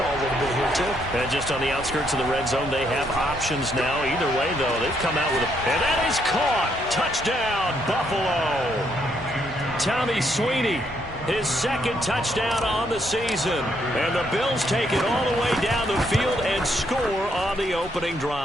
a little bit here too. And just on the outskirts of the red zone, they have options now. Either way, though, they've come out with a... And that is caught! Touchdown, Buffalo! Tommy Sweeney, his 2nd touchdown on the season. And the Bills take it all the way down the field and score on the opening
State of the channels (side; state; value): both; normal; correlation 0.73